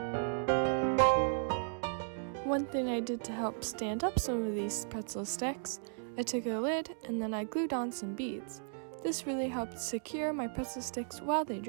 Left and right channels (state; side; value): silent; left; digital silence